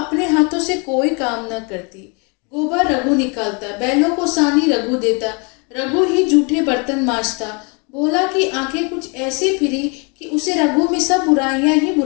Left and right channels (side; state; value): right; quieter; 33.0 dB